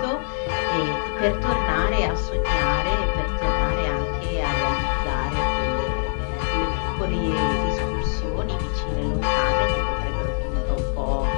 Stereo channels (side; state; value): right; silent; digital silence